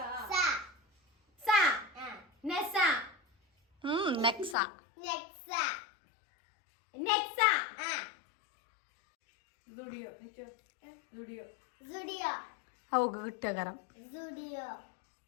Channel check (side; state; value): right; drops out; at 4.5 s